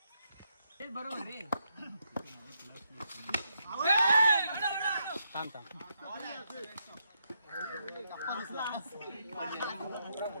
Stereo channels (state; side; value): inverted; both; correlation -0.81